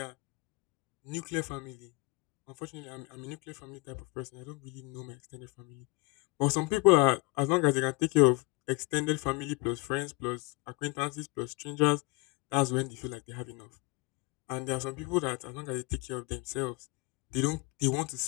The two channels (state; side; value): quieter; right; 26.3 dB